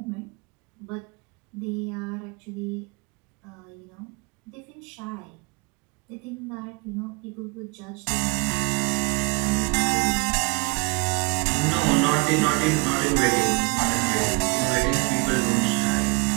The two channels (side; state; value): left; quieter; 29.5 dB